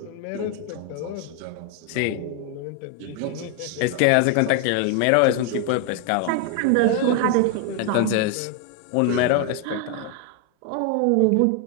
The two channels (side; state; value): both; different; correlation 0.01